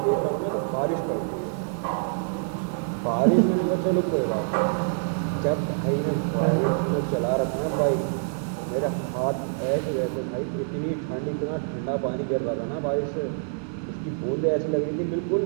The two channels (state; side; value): silent; left; digital silence